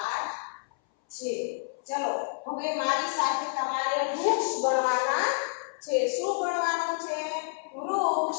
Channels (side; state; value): right; silent; 59 dB below the other